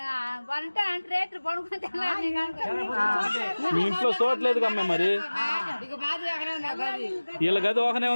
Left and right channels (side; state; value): both; inverted; correlation -1.00